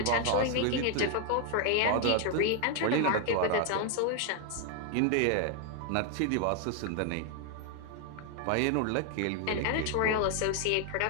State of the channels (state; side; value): different; both; correlation 0.00